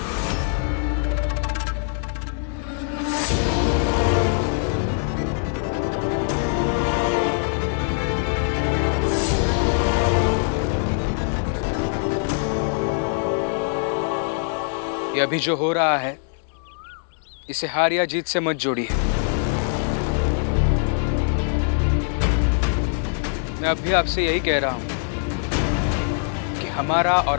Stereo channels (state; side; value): silent; right; digital silence